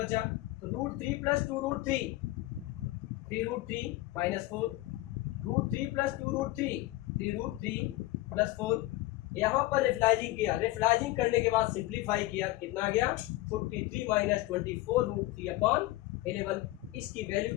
तो root 3 plus 2 root 3 3 root 3 minus 4 root 3 plus 2 root 3 root 3 plus 4। यहाँ पर रेफलाइजिंग किया, रेफलाइजिंग करने के बाद सिंप्लीफाई किया, कितना आ गया 43 माइनस 24 रूट 3 अपॉन 11। इसकी वैल्यू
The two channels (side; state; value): right; quieter; 18.1 dB